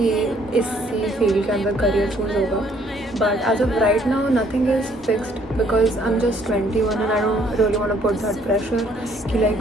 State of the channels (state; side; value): normal; both; correlation 0.64